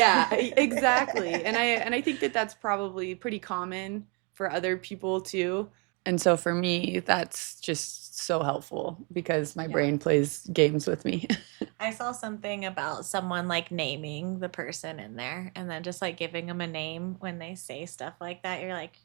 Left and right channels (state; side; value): quieter; left; 32.9 dB